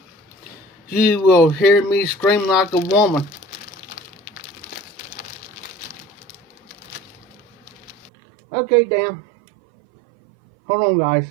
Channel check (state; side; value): drops out; left; at 8.1 s